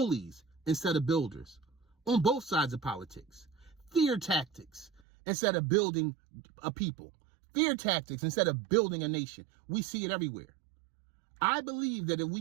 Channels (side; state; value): left; drops out; at 5.0 s